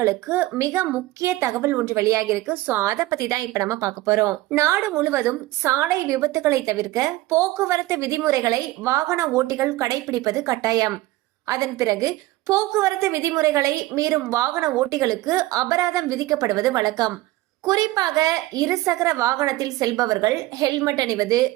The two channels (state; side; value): quieter; left; 17.8 dB